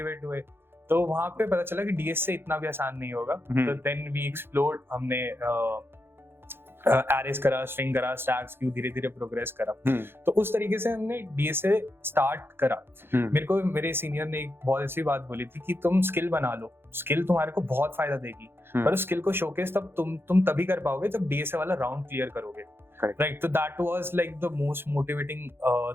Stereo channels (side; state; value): left; late; 0.11 ms